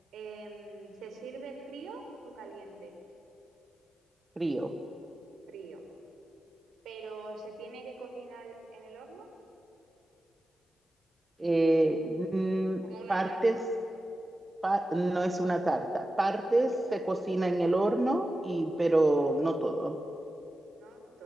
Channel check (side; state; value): both; normal; correlation 0.93